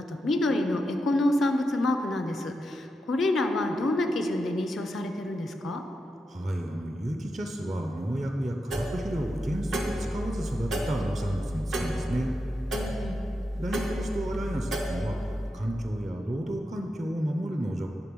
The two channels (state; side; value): normal; both; correlation 0.87